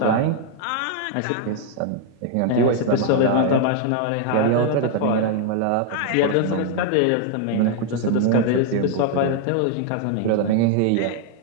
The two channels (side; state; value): both; different; correlation 0.00